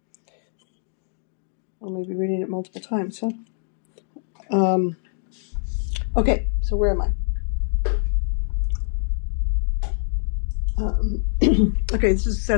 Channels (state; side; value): silent; right; digital silence